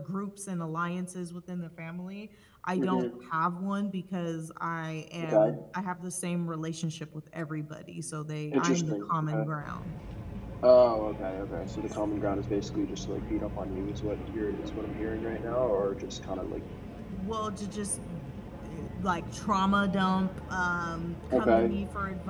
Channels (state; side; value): identical; both; correlation 1.00